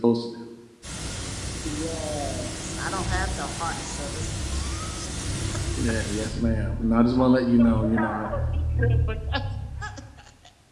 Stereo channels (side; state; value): both; identical; correlation 1.00